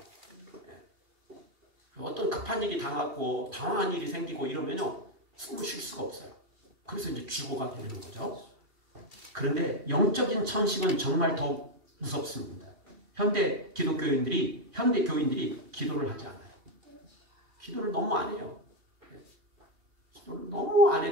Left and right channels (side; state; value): left; late; 2.8 ms